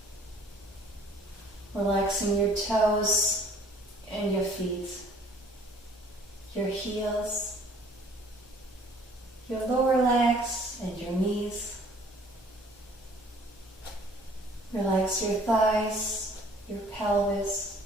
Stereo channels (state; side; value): normal; both; correlation 0.55